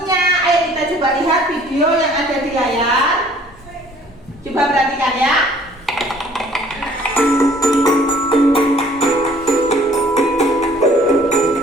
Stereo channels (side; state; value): both; normal; correlation 0.56